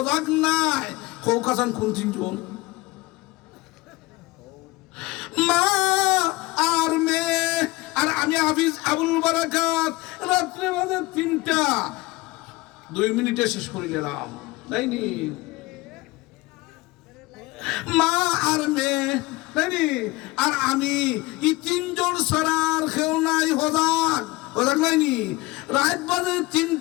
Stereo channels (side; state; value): right; quieter; 21.5 dB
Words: নাই। কৌকাসান কোন 3জন? মা আর মেয়ে আর আমি হাফিজ আবুল বারাকাত রাত্রে বাজে 3টা 2 মিনিটে শেষ করে গেলাম তাইনি মা আর মেয়ে তাইনি আর আমি এই 3 জন সরার কেউ নাই হজাক হজাক নাইনি রাত বাজে